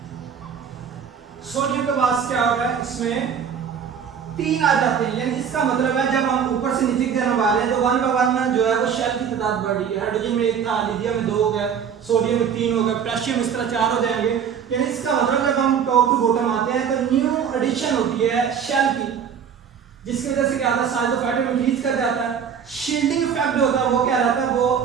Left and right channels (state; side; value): quieter; left; 7.5 dB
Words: सोडियम के पास क्या होगा, इसमें 3 आ जाते हैं। यानी इसका मतलब है जब हम ऊपर से नीचे की तरफ आ रहे हैं तो 1 बाय 1 जो है वो शेल की तादाद बढ़ रही है। हाइड्रोजन में 1 था, लिथियम में 2 हो गया, सोडियम में 3 हो गया, पोटेशियम इस तरह 4 हो जाएंगे। यानी इसका मतलब जब हम टॉप टू बॉटम आते हैं तो न्यू एडिशन होती है शेल की, जिसकी वजह से क्या होता है साइज ऑफ एटम इंक्रीज कर जाता है। शील्डिंग इफेक्ट जो होता है वो क्या रहता है,